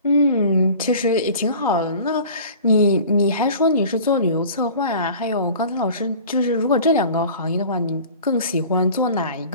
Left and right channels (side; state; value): both; inverted; correlation -0.43